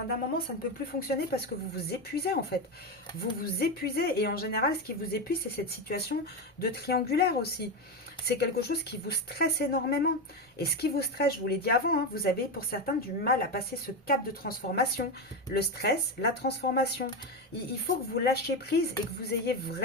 moment, ça ne peut plus fonctionner parce que vous vous épuisez, en fait. Vous vous épuisez, et en général, ce qui vous épuise, c'est cette situation de triangulaire aussi. C'est quelque chose qui vous stresse énormément. Et ce qui vous stresse, je vous l'ai dit avant, hein, vous avez pour certains du mal à passer ce cap de transformation. Le stress, la transformation. Il faut que vous lâchiez prise et que vous ayez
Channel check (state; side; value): normal; both; correlation 0.13